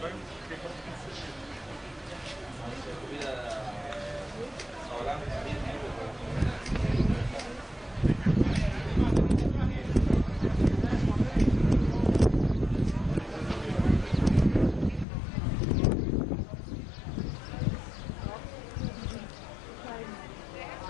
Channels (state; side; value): drops out; right; at 15.1 s